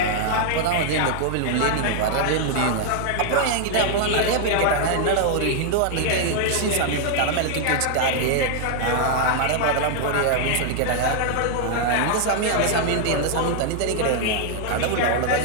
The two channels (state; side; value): different; both; correlation 0.00